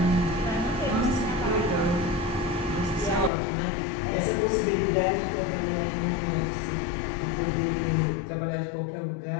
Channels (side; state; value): right; drops out; at 3.3 s